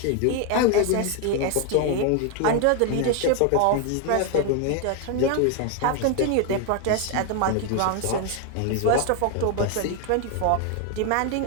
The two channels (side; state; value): both; different; correlation 0.01